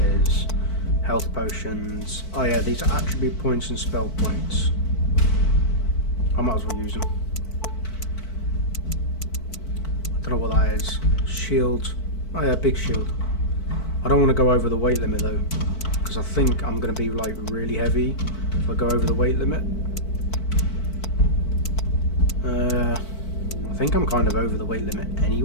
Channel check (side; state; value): right; late; 4.5 ms